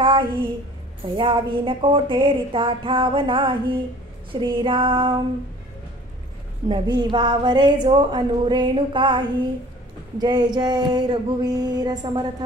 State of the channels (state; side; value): normal; both; correlation 0.49